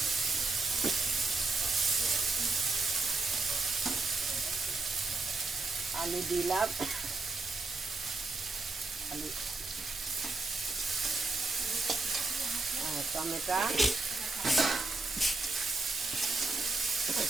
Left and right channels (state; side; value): quieter; left; 3.4 dB